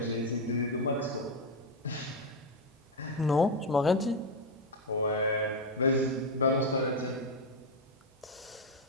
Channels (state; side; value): normal; both; correlation 0.06